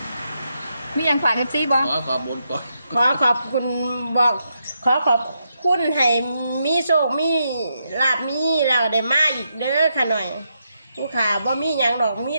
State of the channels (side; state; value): both; inverted; correlation -0.82